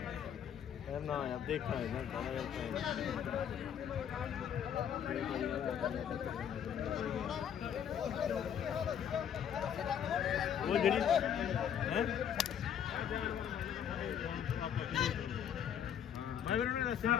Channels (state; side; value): quieter; right; 8.9 dB